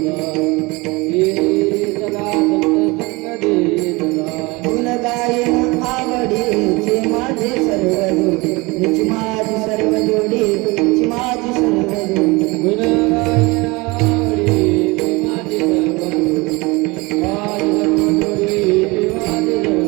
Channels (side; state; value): left; quieter; 24.5 dB